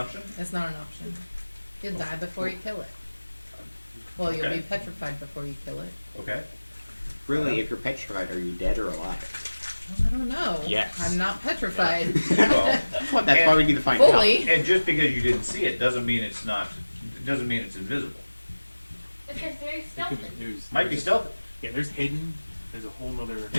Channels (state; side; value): inverted; both; correlation -1.00